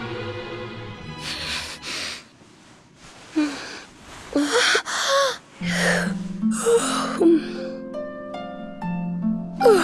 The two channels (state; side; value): identical; both; correlation 1.00